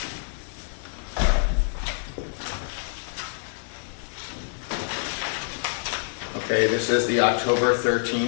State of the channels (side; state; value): right; silent; digital silence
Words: Okay, this is the October